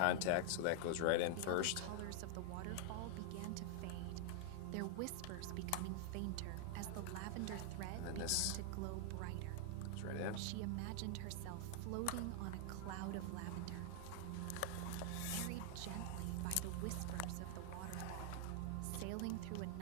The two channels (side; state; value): both; different; correlation 0.00